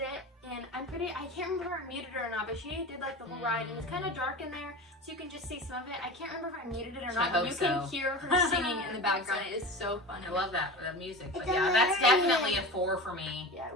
it. And I can't remember if I muted it or not, but she did like the whole ride, and it's kind of dark in there, so you can just see some of it. I can't remember if I muted it or not, but you can hear her singing in the background. It is so funny. I love that music. But It's yeah, that's amazing. definitely a 4 for me. Yeah, I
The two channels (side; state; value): both; normal; correlation 0.31